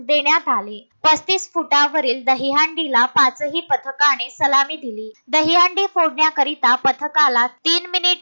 देण्यात आले। 35 फुटावरील दहीहंडीला 5ही पथकाने सलामी दिली। दहीहंडी फोडण्याकरिता पथकाला 3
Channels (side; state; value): both; inverted; correlation -1.00